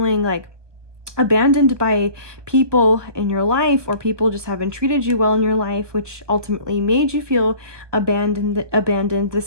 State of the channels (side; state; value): left; late; 1.2 ms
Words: like abandoned by people in your life, or people just haven't treated you well in your life, which ultimately made you feel abandoned. There's